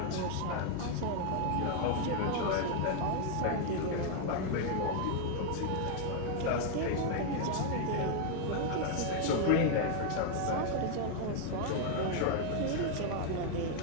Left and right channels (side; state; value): both; different; correlation 0.00